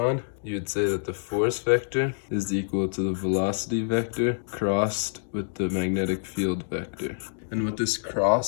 you would say that the force vector is equal to the velocity vector crossed with the magnetic field vector. And what this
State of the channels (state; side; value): silent; right; digital silence